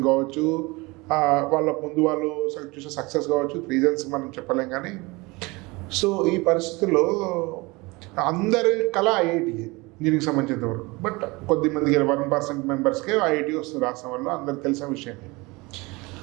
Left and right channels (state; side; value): quieter; left; 24.3 dB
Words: కావచ్చు, వాళ్ళ ముందు వాళ్ళు చూసే సక్సెస్ కావచ్చు, రీజన్స్ మనం చెప్పలేం. కానీ సో ఈ పరిస్థితుల్లో అందరి కళ ఐఐటీ ఇంజనీరింగ్ సంబంధించినంత వరకు, బట్ కొద్దిమందికి 1% మెంబర్స్కే ఐఐటీ వస్తుంది రాష్ట్రం వల్ల, అందరికి తెలిసిన విషయమే.